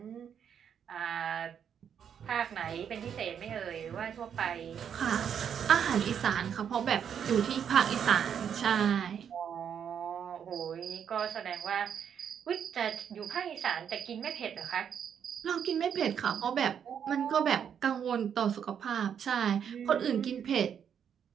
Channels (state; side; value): quieter; left; 8.1 dB